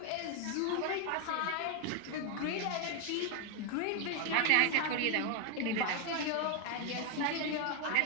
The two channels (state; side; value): different; both; correlation 0.01